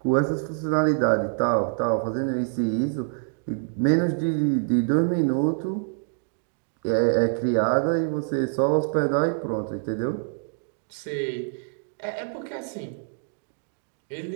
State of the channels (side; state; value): left; silent; digital silence